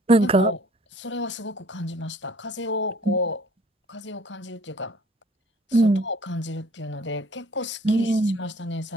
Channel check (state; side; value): normal; both; correlation 0.54